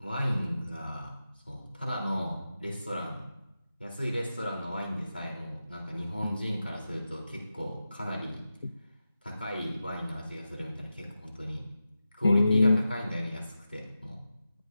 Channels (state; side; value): inverted; both; correlation -0.91